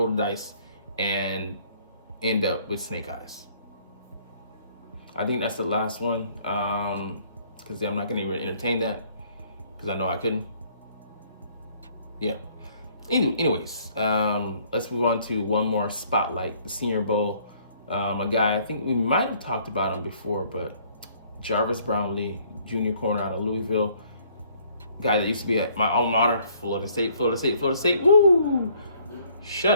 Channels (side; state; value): both; inverted; correlation -0.62